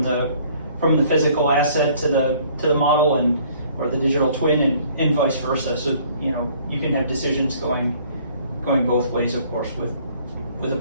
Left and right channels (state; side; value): inverted; both; correlation -0.58